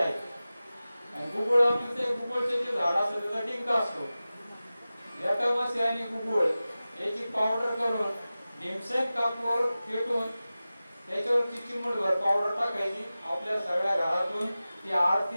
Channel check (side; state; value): both; inverted; correlation -0.96